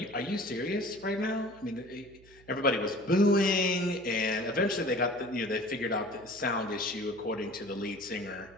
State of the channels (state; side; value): noise; right; hum, 25 dB below the sound